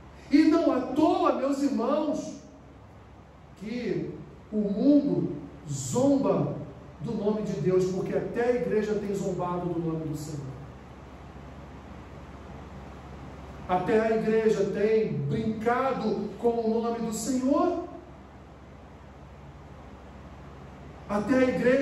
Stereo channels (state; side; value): identical; both; correlation 1.00